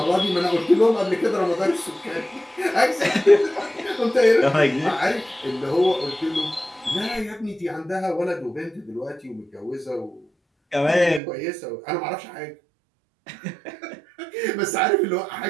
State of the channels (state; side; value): drops out; left; at 11.2 s